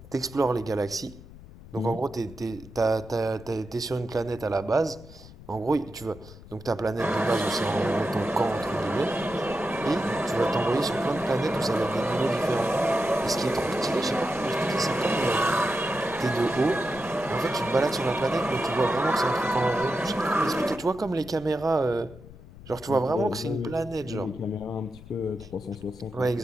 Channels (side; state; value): left; noise; rumble, 18 dB below the sound